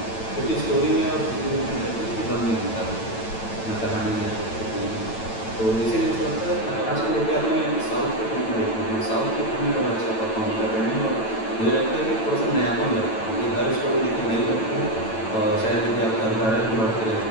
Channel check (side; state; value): right; late; 9.0 ms